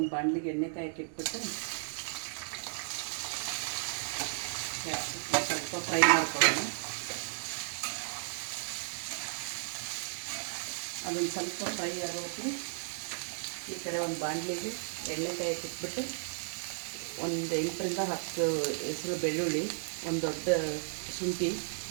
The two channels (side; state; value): left; silent; digital silence